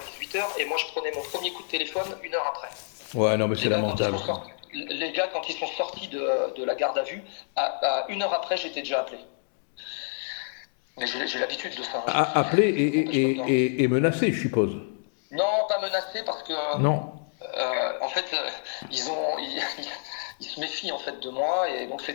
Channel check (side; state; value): right; silent; digital silence